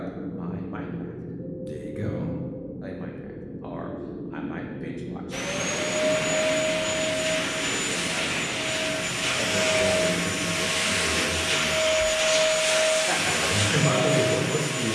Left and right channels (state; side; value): identical; both; correlation 1.00